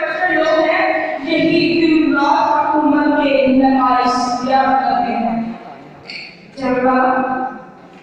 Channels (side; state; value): both; identical; correlation 1.00